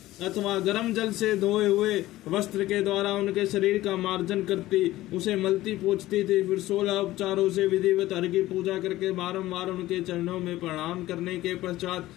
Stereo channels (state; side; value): quieter; right; 16.3 dB